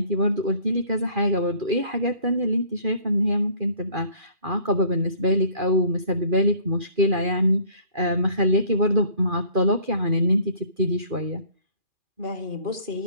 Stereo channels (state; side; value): late; left; 2.4 ms